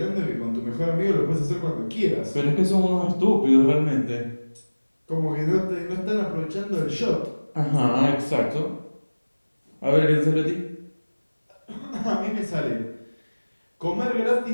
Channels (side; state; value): both; inverted; correlation -1.00